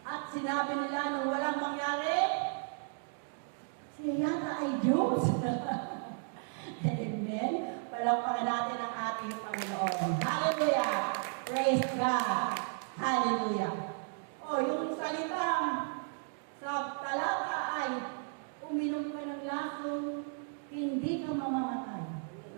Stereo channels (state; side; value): silent; left; 55 dB below the other